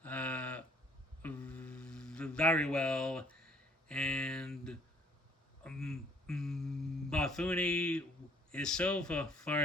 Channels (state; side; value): normal; both; correlation 0.61